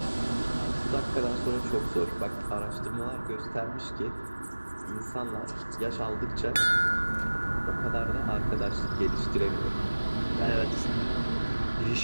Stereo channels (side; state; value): both; inverted; correlation -1.00